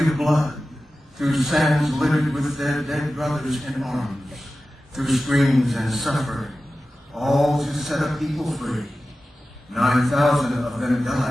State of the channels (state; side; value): normal; both; correlation 0.94